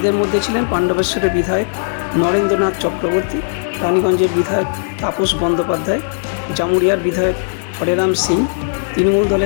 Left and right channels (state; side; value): silent; right; 55 dB below the other